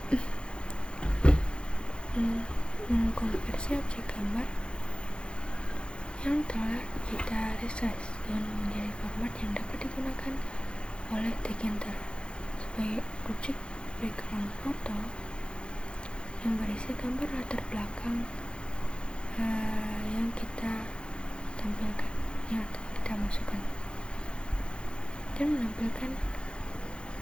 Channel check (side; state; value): right; late; 0.055 ms